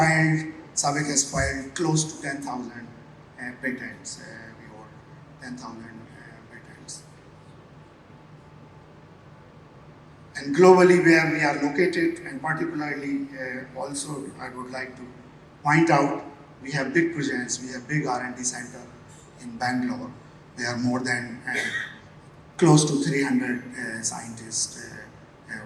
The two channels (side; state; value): both; identical; correlation 1.00